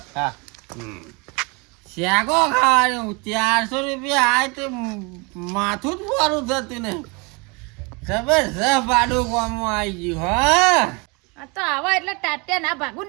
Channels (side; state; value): left; quieter; 29.8 dB